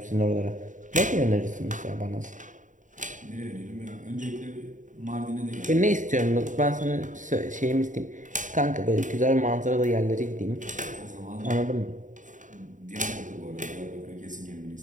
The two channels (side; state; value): left; late; 0.37 ms